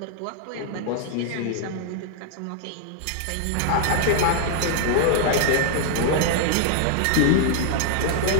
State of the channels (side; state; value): both; different; correlation 0.00